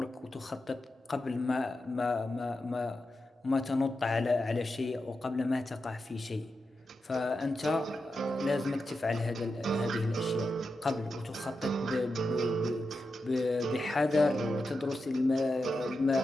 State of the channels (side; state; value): both; normal; correlation 0.89